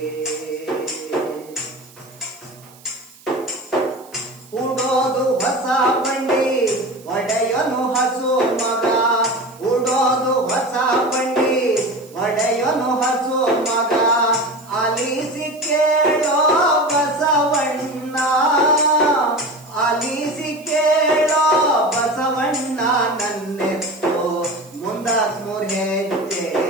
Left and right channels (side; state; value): right; noise; hiss, 25 dB below the sound